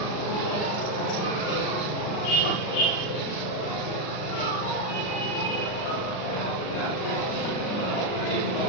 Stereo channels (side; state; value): right; late; 39 ms